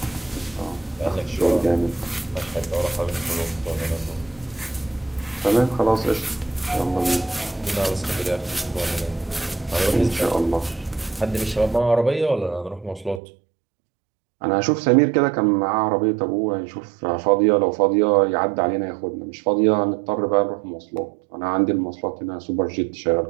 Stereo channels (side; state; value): left; drops out; at 13.2 s